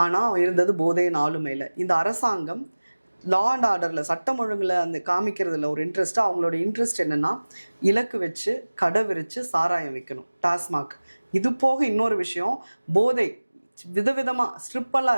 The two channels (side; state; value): both; inverted; correlation -1.00